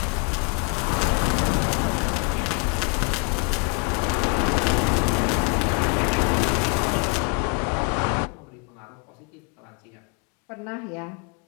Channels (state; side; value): quieter; right; 35.0 dB